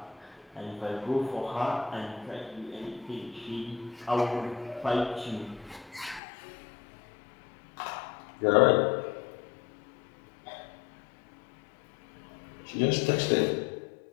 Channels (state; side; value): drops out; right; at 6.2 s